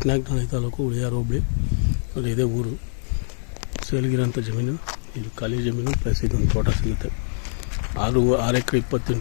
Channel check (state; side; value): silent; right; 59 dB below the other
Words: taluk ಉಳಿಯಾರು ಹೋಬಳಿ ಅಲ್ಲಿ ಇದೆ ಊರು. ಸೇಲ್ಗಿರೋಂಥ ಜಮೀನು ಇದು ಖಾಲಿ ಜಮೀನು ಪ್ಲಸ್ ಇದೊಂದು ತೋಟ ಸಿಗುತ್ತೆ. 6 ಎಕರೆ